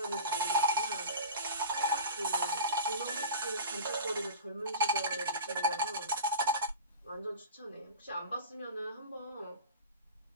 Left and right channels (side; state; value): both; inverted; correlation -0.32